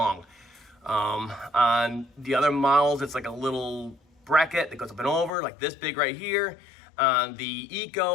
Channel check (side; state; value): right; drops out; at 5.3 s